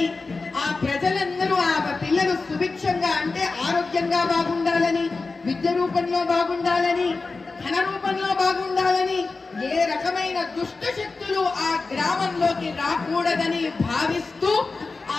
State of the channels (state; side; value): quieter; right; 3.9 dB